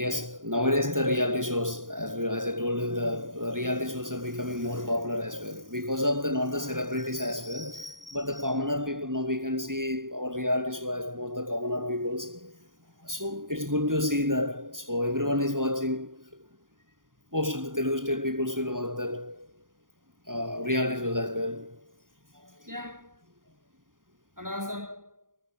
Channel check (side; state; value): left; late; 0.90 ms